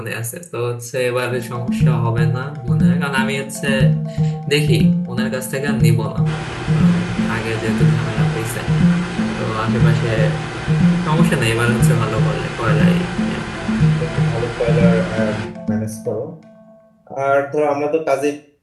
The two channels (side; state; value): both; identical; correlation 1.00